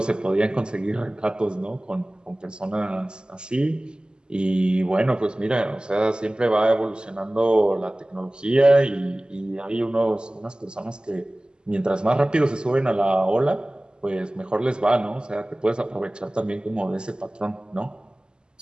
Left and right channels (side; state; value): left; late; 0.048 ms